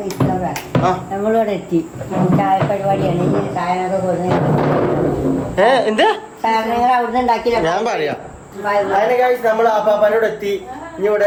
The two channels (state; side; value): identical; both; correlation 1.00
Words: നമ്മളിവിടെ എത്തി. ചായ പരിപാടിയാണ്. സാധനമൊക്കെ സാധനങ്ങൾ അവിടുന്ന് ഉണ്ടാക്കിയില്ല. ഞാൻ പറയാം. അതിന് ഗൈസ് നമ്മൾ ആപ്പാപ്പനോട് എത്തി. ഇനി